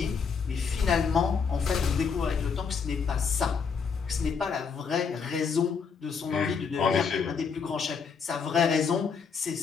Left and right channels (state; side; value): quieter; right; 5.9 dB